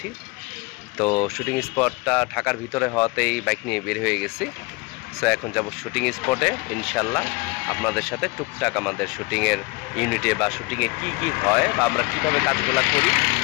তো শুটিং স্পটটা ঢাকার ভিতরে হওয়াতেই বাইক নিয়ে বের হয়ে গেছি। সো এখন যাব শুটিং স্পটে ইনশাল্লাহ। আপনাদের সাথে টুকটাক আমাদের শুটিংয়ের ইউনিটে বা শুটিংয়ে কি হয় বা আমরা কীভাবে কাজগুলো করি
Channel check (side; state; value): right; quieter; 26.0 dB